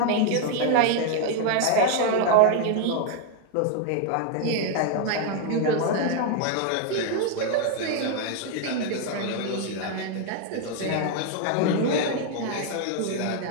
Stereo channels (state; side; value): different; both; correlation 0.00